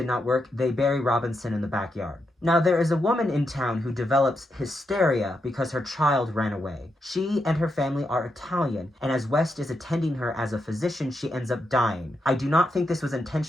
not work, they bury Robinson in the backyard. Now, there is a woman in town who develops hysteria because her child ran away. She and her family are Italian, and as West is attending her as a physician, she ends up dying. I do not think this was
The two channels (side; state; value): both; normal; correlation 0.83